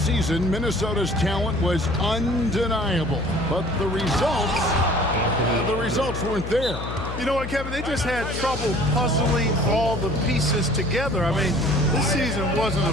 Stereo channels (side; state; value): left; noise; hum, 7 dB below the sound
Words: season, Minnesota's talent was undeniable, but the results weren't there. You know what, Kevin? They just had trouble puzzling all the pieces together. I mean, this season wasn't a